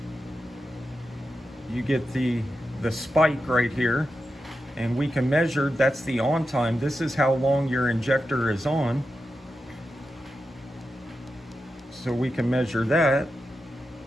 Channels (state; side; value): normal; both; correlation 0.89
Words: you get the spike right here, and we can measure, that's the on time. This is how long your injector is on. So we can measure that